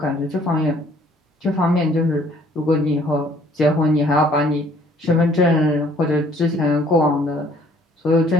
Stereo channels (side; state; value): both; normal; correlation 0.59